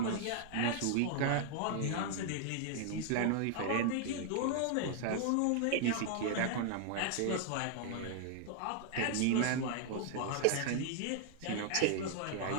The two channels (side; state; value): both; different; correlation 0.00